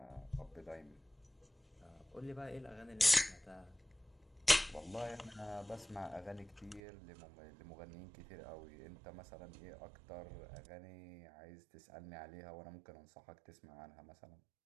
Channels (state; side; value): drops out; left; at 6.8 s